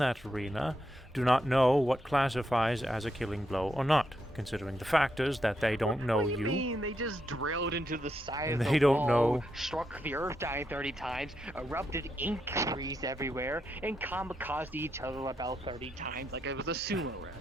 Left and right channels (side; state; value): both; normal; correlation 0.81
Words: arena do not know what classifies as a killing blow or not, considering the factors that they don't know What do you you. mean? They just drilled into the side And of the they don't wall, know. struck the earth dying 30 times, erupted ink trees everywhere, and kamikazed each other about 30 times like it was a sumo